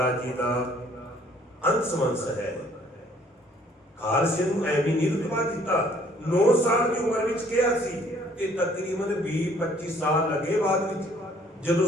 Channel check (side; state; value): both; normal; correlation 0.60